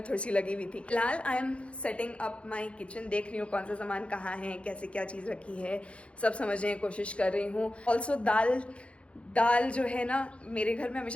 थोड़ी सी लगी हुई थी. फिलहाल I am setting up my kitchen, देख रही हूँ कौन सा सामान कहाँ है, कैसे क्या चीज़ रखी है, सब समझने की कोशिश कर रही हूँ. ऑल्सो दाल जो है ना, मेरे घर में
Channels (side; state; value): right; late; 0.060 ms